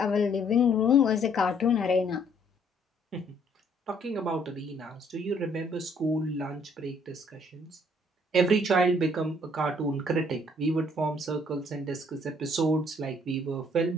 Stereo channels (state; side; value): normal; both; correlation 0.64